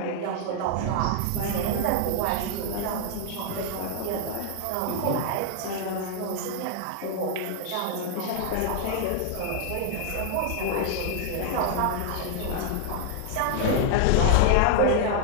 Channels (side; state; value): both; different; correlation 0.00